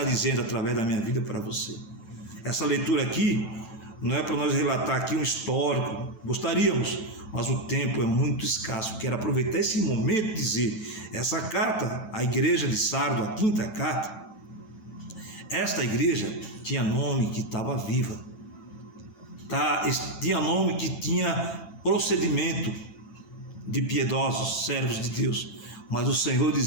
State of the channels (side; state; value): right; late; 9.1 ms